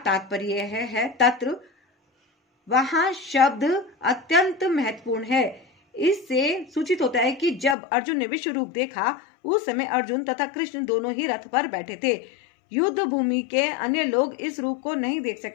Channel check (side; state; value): right; drops out; at 7.8 s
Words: तात्पर्य यह है तत्र वहां शब्द अत्यंत महत्वपूर्ण है। इससे सूचित होता है कि जब अर्जुन ने विश्व रूप देखा उस समय अर्जुन तथा कृष्ण दोनों ही रथ पर बैठे थे। युद्ध भूमि के अन्य लोग इस रूप को नहीं देख